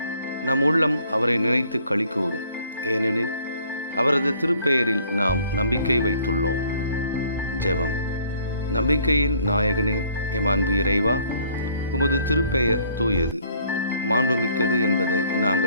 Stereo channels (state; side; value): inverted; both; correlation -0.61